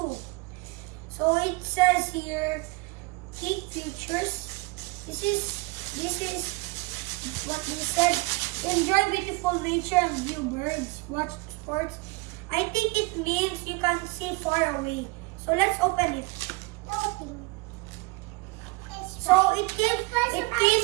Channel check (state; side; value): quieter; left; 26.4 dB